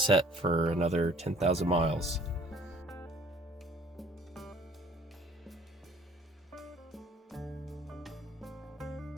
for another 10,000 miles.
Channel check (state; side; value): normal; both; correlation 0.55